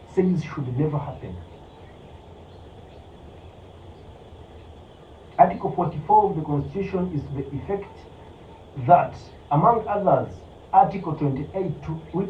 says should never happen. Article 44 of the Constitution is to the effect that, among others, Article 28,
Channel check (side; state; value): both; identical; correlation 1.00